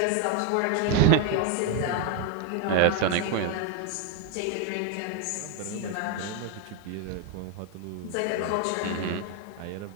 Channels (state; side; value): different; both; correlation 0.01